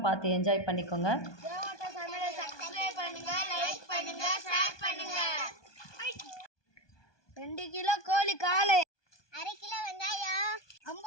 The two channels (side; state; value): right; late; 1.2 ms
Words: பார்த்து என்ஜாய் பண்ணிக்கோங்க. தேவோட்ட சமையலை சப்ஸ்கிரைப் பண்ணுங்க, லைக் பண்ணுங்க, ஷேர் பண்ணுங்க. 2 கிலோ கோழி கால், 1/2 கிலோ வெங்காயம்,